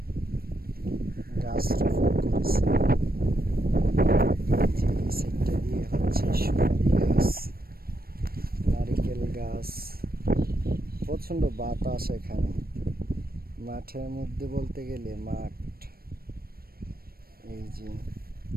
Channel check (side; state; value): left; late; 0.44 ms